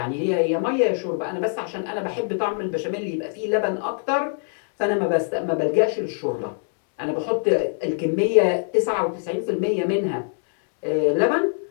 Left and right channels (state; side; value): silent; right; digital silence